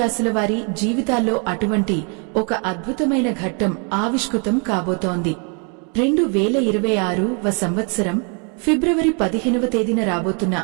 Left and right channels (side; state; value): left; quieter; 37.5 dB